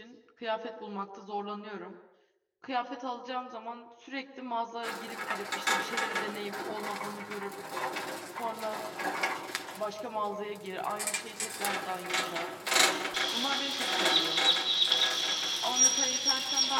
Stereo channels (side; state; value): both; identical; correlation 1.00